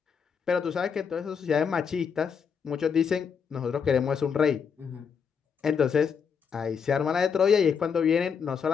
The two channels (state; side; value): quieter; right; 6.5 dB